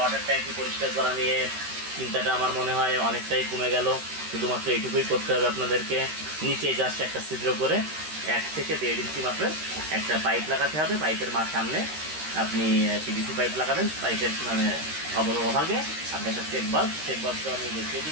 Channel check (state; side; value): late; left; 13 ms